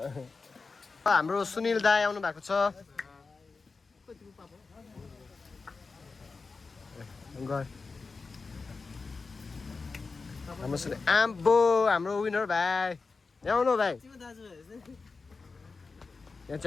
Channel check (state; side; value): quieter; right; 4.3 dB